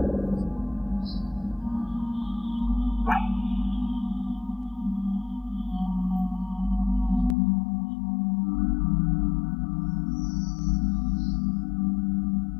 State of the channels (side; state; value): right; drops out; at 7.4 s